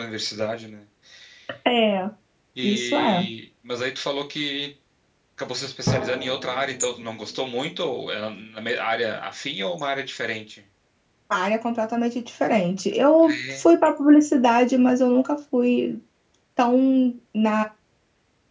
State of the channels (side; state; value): both; identical; correlation 1.00